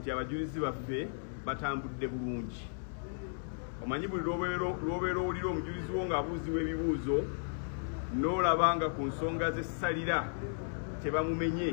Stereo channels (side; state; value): right; silent; digital silence